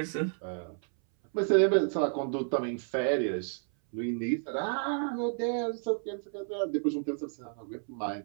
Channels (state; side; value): silent; left; 57 dB below the other